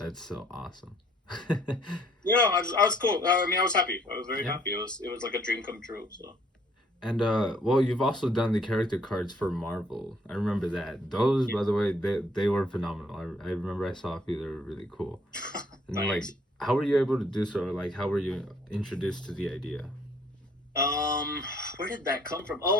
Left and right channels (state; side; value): normal; both; correlation 0.63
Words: so awesome. Yeah, I was cool. I was happy. I was very happy. It was like a dream come true. So. And well, you've also done the character cards for Marvel. I remember that. Those, by the way, they were phenomenal. I remember I saw a few. They were really cool. And then, like, how were you able to do so? Or, like, how were you introduced to the idea? Where did that come from?